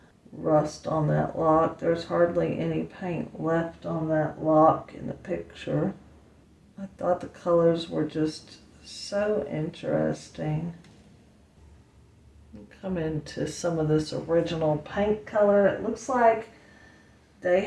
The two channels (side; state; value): both; identical; correlation 1.00